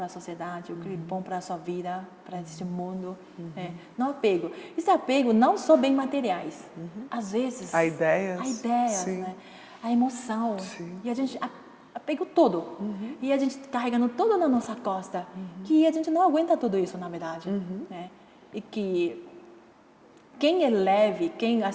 a sociedade, o que é bom para a sua vida, para esse mundo. Não apego. Esse apego não só bem materiais. Às vezes... A ideias, né? A emoção. E a gente apego todo. E a gente carregando tudo na nossa costa. Que a gente não aguenta tudo isso, na verdade. Né? E que quem é leve, quem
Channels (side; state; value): both; identical; correlation 1.00